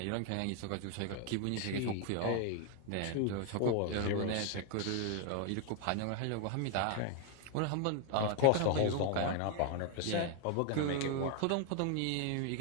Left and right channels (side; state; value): both; different; correlation 0.00